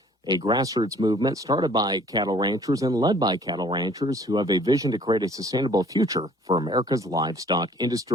a grassroots movement started by cattle ranchers and led by cattle ranchers who have a vision to create a sustainable future for America's livestock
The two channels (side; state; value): both; normal; correlation 0.55